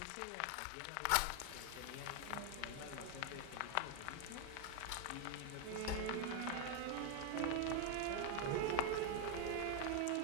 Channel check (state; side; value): different; both; correlation 0.00